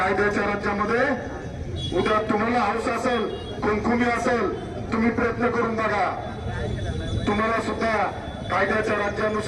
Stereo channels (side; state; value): both; identical; correlation 1.00